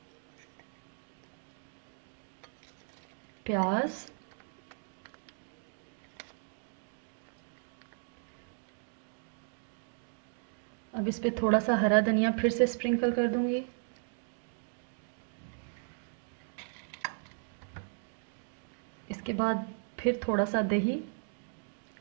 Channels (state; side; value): silent; left; digital silence